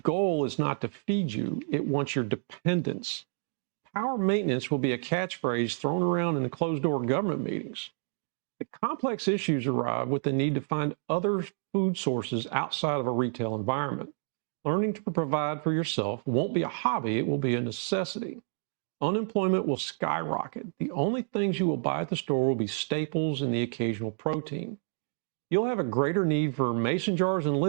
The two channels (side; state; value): left; silent; digital silence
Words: is not to feed you, it wants your dependence. Power maintenance will be a catchphrase thrown around in the closed-door government meetings. The complex issues arrive with the need to find other food sources outside of a retail environment. Learning to provide for yourself won't be a hobby, it will be a necessity. Unemployment will skyrocket. The only things you will buy at the store will be staples and the occasional protein. You'll have a greater need for mason jars and